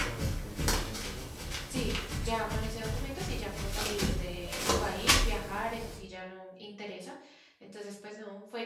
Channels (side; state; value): both; identical; correlation 1.00